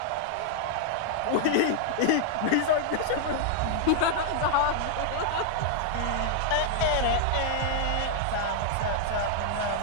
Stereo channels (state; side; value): different; both; correlation 0.00